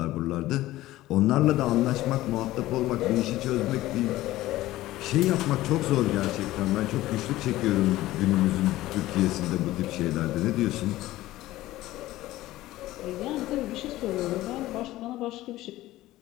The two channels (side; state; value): right; quieter; 16.3 dB